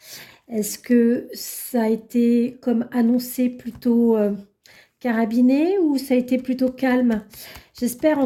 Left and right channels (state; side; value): identical; both; correlation 1.00